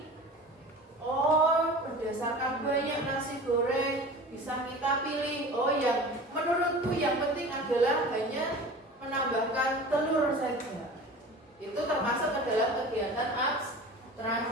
Oh, berdasarkan banyak nasi goreng bisa kita pilih. Oh, yang menurutku yang penting adalah hanya menambahkan telur saja. Itu termasuk adalah kegiatan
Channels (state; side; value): normal; both; correlation 0.37